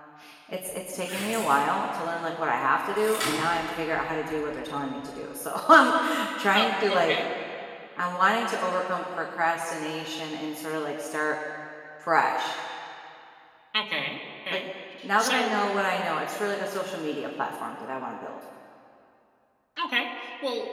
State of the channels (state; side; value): identical; both; correlation 1.00